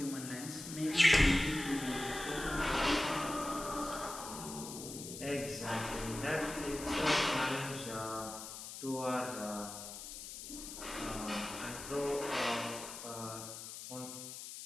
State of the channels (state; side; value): noise; left; hiss, 10 dB below the sound